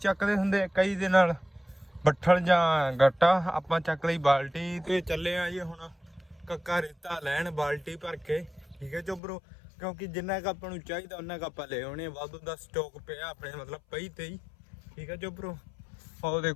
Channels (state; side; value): drops out; right; at 9.2 s